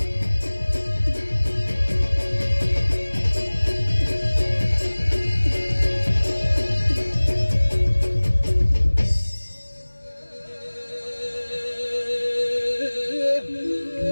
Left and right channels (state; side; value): inverted; both; correlation -1.00